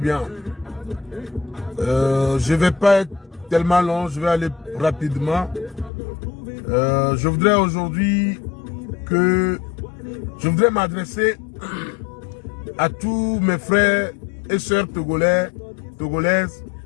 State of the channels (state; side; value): drops out; right; at 5.9 s